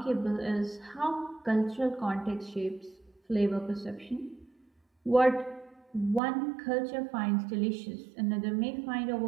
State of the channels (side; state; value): left; drops out; at 6.2 s